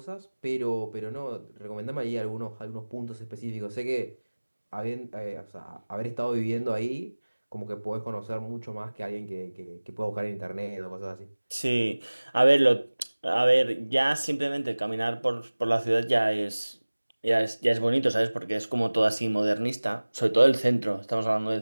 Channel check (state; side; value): inverted; both; correlation -1.00